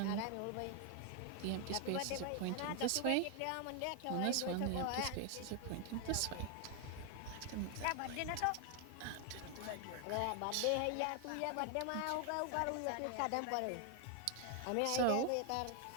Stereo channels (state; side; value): different; both; correlation 0.00